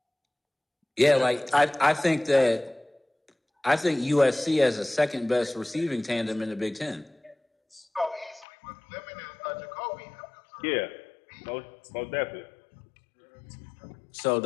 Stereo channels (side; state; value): right; drops out; at 8.5 s